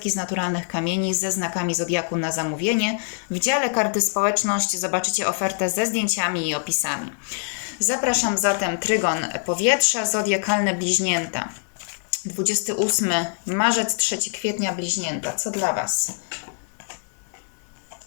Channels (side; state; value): right; silent; digital silence